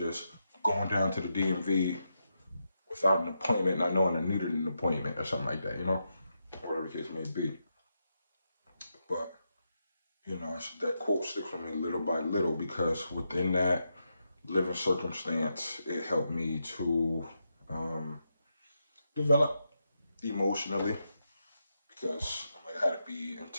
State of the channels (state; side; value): inverted; both; correlation -0.85